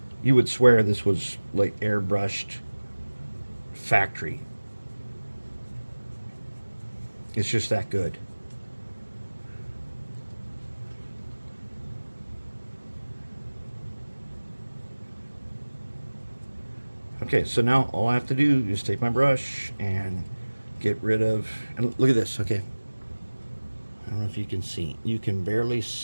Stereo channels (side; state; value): both; inverted; correlation -1.00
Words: swear this was like airbrushed factory. It's just that good. Okay, so now all I have to do is take my brush and get rid of, and look at this, okay. I don't know if you can see. You can barely